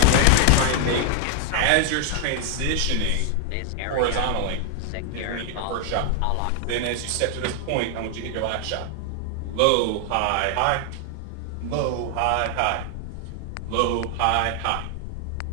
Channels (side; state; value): both; different; correlation 0.00